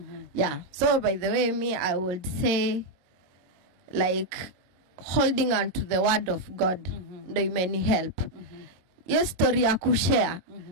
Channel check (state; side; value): late; left; 22 ms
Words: Yeah. So by the way, I would say like holding on to the word of God ndo imeni help. Yes, story ya kushare.